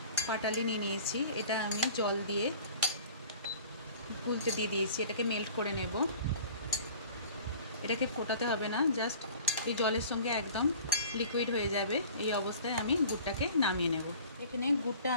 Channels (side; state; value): both; inverted; correlation -0.45